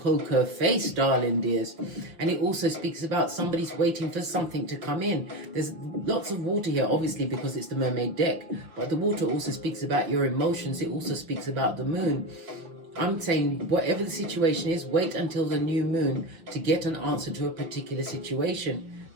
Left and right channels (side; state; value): left; late; 6.1 ms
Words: face, darling dears. And it also speaks about somebody's waiting for something to come in. There's lots of water here, obviously, because it's the mermaid deck. But the water also speaks about your emotions. It also speaks about the moon. I'm saying whatever the situation is, wait until the new moon to get an answer to a particular situation.